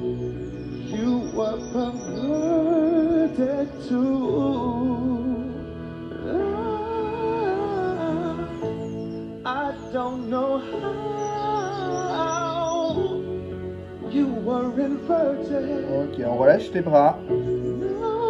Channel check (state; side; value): identical; both; correlation 1.00